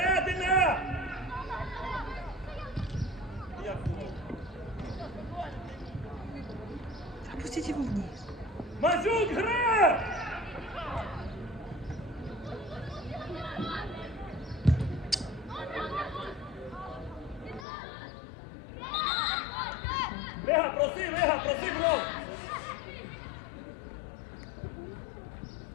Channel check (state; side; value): drops out; right; at 17.7 s